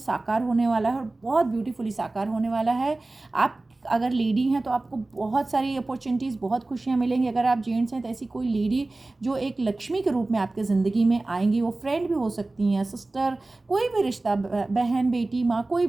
होने वाला है, और बहुत ब्यूटीफुली साकार होने वाला है। आप अगर लेडी हैं तो आपको बहुत सारी अपॉर्चुनिटीज़, बहुत खुशियाँ मिलेंगी। अगर आप जेंट्स हैं तो ऐसी कोई लेडी जो एक लक्ष्मी के रूप में आपके ज़िंदगी में आएंगी, वो फ्रेंड भी हो सकती हैं, सिस्टर, कोई भी रिश्ता, बहन, बेटी, माँ, कोई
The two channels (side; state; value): left; quieter; 3.0 dB